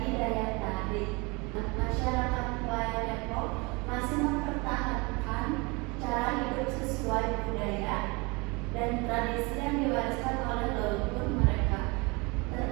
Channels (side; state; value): left; quieter; 27.3 dB